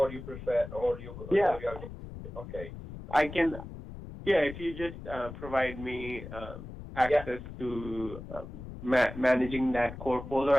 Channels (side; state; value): left; noise; rumble, 12 dB below the sound